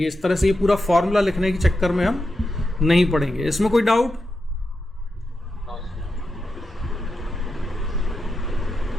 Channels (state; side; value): normal; both; correlation 0.88